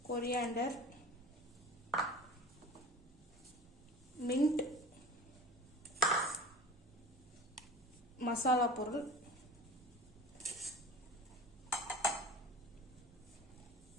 கொரியாண்டர், மின்ட், மசாலா பொருள்,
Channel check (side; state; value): both; normal; correlation 0.38